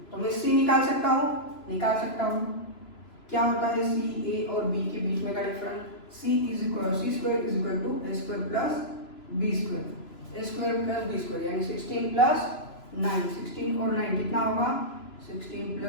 तो मैं सी निकाल सकता हूँ। क्या होता है सी, ए और बी के बीच में का difference, c square is equal to A square plus B square, A square plus B square यानी 16 प्लस 9, 16 और 9 कितना होगा, 16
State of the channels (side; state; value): right; late; 3.0 ms